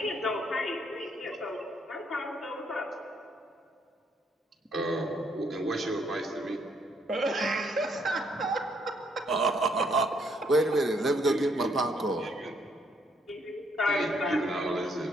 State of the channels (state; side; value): normal; both; correlation 0.70